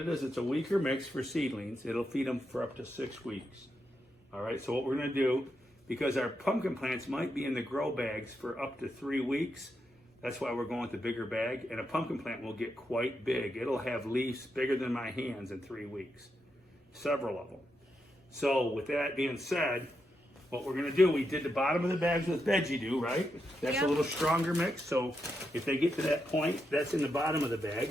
a weaker mix for seedlings. It'll feed them for up to 6 weeks. All right, so what we're gonna do, because our pumpkin plants might be in the grow bags for up to 3 weeks, that's why we're going with the bigger bag. And a pumpkin plant will get quite big. It'll have leaves bigger than my hands in 3 weeks. Several of them. So with that being said, what we're gonna do, we did the bottom of the bags with veggie dew, right? That's Yep. a little stronger mix. So if they get to that point, that's in the bottom of the bag.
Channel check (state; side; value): normal; both; correlation 0.84